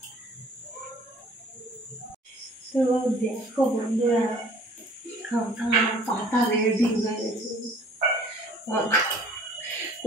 তো দেখো বন্ধুরা, পাতা রেডি হয়ে গেছে,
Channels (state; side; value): normal; both; correlation 0.53